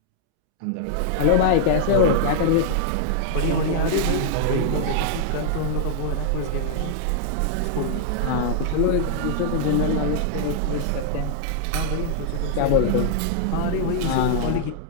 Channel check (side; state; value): both; different; correlation -0.01